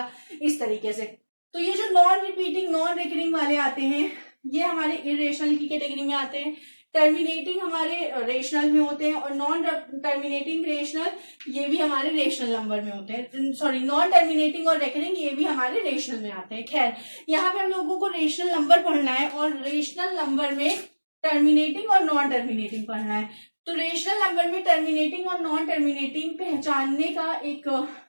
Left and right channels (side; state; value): both; inverted; correlation -1.00